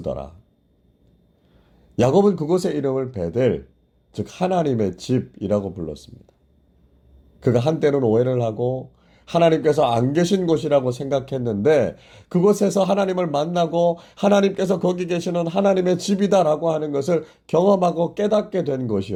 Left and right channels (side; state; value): both; identical; correlation 1.00